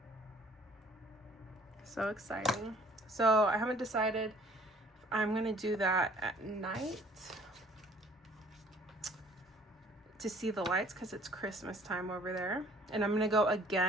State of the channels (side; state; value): both; normal; correlation 0.56